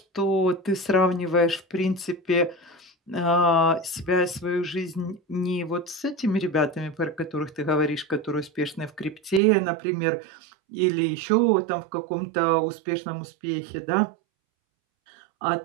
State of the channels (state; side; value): drops out; left; at 9.4 s